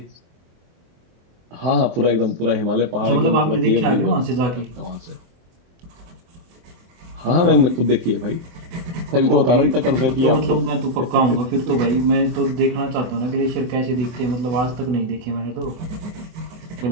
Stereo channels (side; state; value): left; late; 24 ms